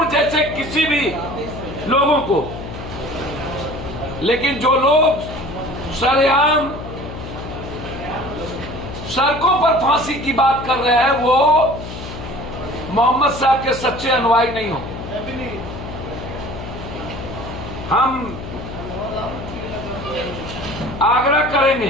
जैसे किसी भी लोगों को। लेकिन जो लोग सरेआम सड़कों पर फांसी की बात कर रहे हैं वो मोहम्मद साहब के सच्चे अनुयायी नहीं हो। हम आग्रह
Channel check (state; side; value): noise; left; hum, 10 dB below the sound